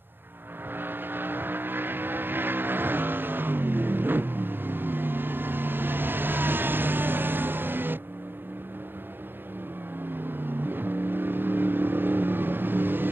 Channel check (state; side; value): late; left; 0.10 ms